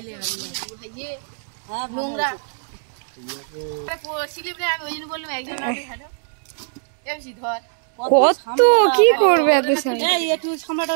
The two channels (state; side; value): silent; left; 63 dB below the other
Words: কত কি করবে এত সময়? একটু সামলাটা